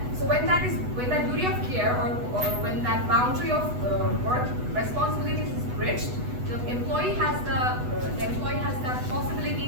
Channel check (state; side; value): late; left; 8.1 ms